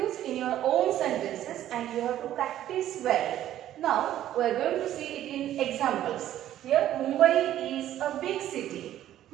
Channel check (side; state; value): left; quieter; 12.3 dB